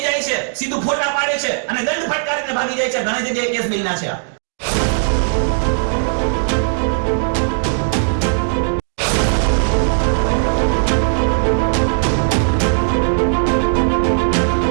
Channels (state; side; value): silent; left; digital silence